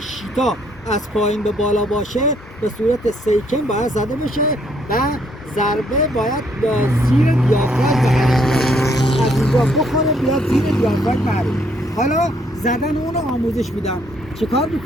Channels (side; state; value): both; normal; correlation 0.69